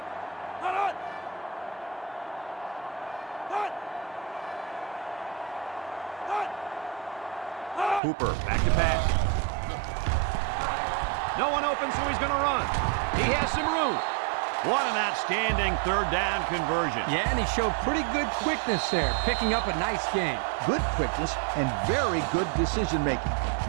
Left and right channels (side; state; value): left; drops out; at 8.0 s